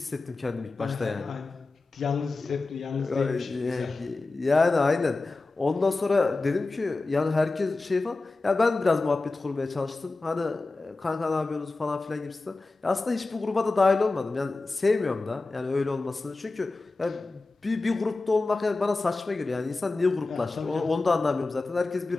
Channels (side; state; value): right; quieter; 3.4 dB